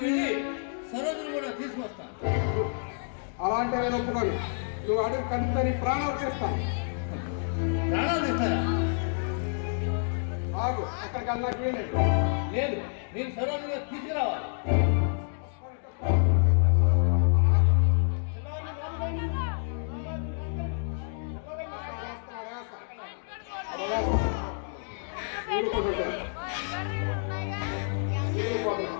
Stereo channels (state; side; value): silent; right; digital silence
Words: సరోజుని కూడా తీసుకొస్తాను. అలాంటి నేను ఒప్పుకోను. నువ్వు అడుగు కడితే నీ ప్రాణాలు చేస్తాను. ప్రాణాలు తీస్తారా? ఆగు, అక్కడికి వెళ్ళడానికి వీలేదు. లేదు, నేను సరోజుని తీసుకురావాలి.